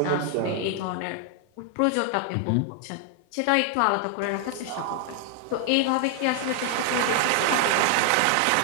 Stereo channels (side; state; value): both; different; correlation 0.00